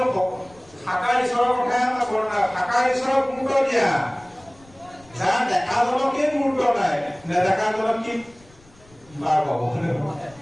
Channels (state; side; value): noise; left; rumble, 27 dB below the sound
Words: সাকাৰ ঈশ্বৰৰ কথাহে আমাৰ বৰ্ণনা, সাকাৰ ঈশ্বৰক গুৰুত্ব দিয়া। যাৰ দেখাজনকেই গুৰুত্ব নাই, নেদেখাজনক কি বাৰ পাব?